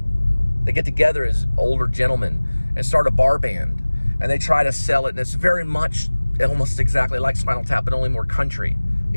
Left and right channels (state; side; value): inverted; both; correlation -1.00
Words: They get together as older gentlemen and start a bar band. And they try to sell it, and it's very much almost exactly like Spinal Tap, but only more country.